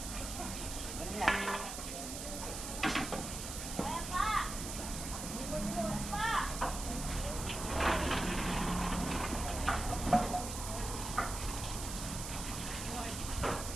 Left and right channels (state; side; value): noise; right; hiss, 6 dB below the sound